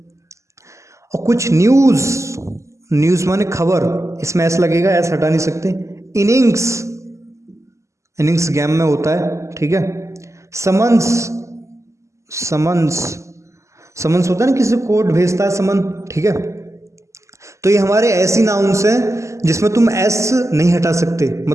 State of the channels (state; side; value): late; left; 0.14 ms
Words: और कुछ न्यूज़, न्यूज़ माने खबर, इसमें एस लगेगा, एस हटा नहीं सकते। इनिंग्स, इनिंग्स गेम में होता है, ठीक है। समन्स, समन्स, समन्स होता है ना, किसी को कोड भेजता है समन, ठीक है। तो ये हमारे ऐसी नाउन्स हैं जिसमें तुम एस नहीं हटा सकते,